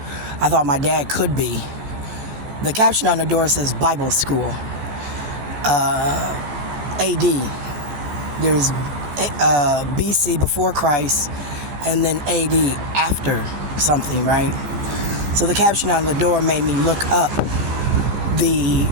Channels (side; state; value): left; late; 15 ms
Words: I thought my dad could be. The caption on the door says Bible School. AD. There's BC, before Christ, and then AD, after something, right? So the caption on the door made me look up the